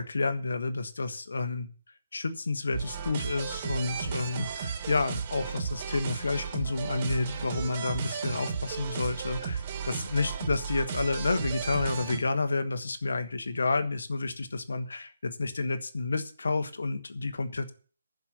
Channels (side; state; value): both; inverted; correlation -0.85